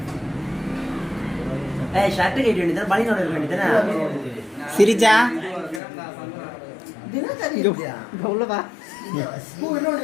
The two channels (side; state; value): right; drops out; at 5.8 s